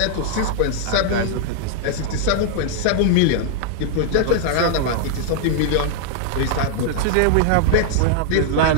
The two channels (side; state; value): both; different; correlation -0.01